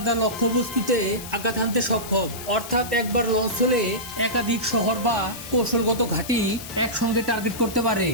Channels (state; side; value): noise; left; hiss, 12 dB below the sound